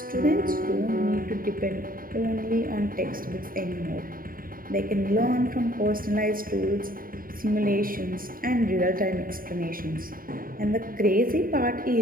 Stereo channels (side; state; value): left; late; 0.41 ms